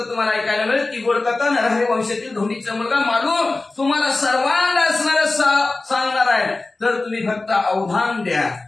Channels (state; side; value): quieter; right; 3.3 dB